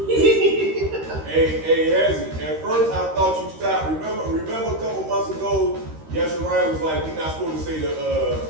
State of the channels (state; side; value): late; left; 13 ms